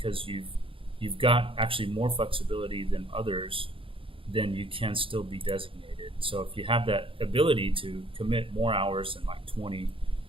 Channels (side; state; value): left; late; 0.26 ms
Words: you've got actually more flexibility than others, then you can still be designated. So if you have that ability to commit more hours than like 20